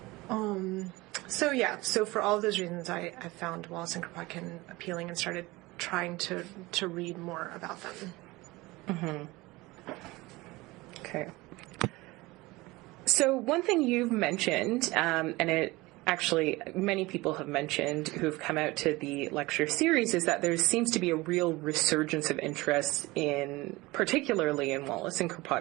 so for all of those reasons, I found Wallace and Kropotkin appealing and started trying to read more about them. Okay. So one thing you've mentioned, and it actually many people have mentioned who've come out to the lecture series, is that there seems to be a real resurgence of interest particularly in Wallace and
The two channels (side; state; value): left; quieter; 21.2 dB